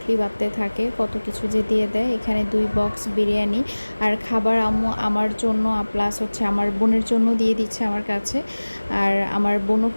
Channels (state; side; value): inverted; both; correlation -1.00